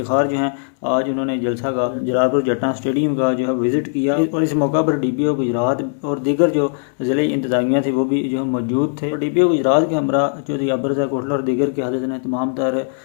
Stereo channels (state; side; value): silent; right; digital silence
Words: जो हैं, आज उन्होंने जलसा का जलालपुर जट्टा स्टेडियम का जो है विज़िट किया और इस मौका पर DPO गुजरात और दीगर जो ज़िले इंतज़ामिया थी वो भी जो मौजूद थे। DPO गुजरात के हमरा चौधरी अबर रज़ा गोल्ला और दीगर की हाजत ने तमाम तर